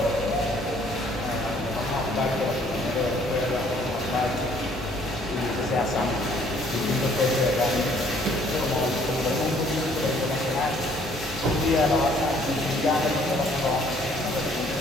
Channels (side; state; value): both; normal; correlation 0.61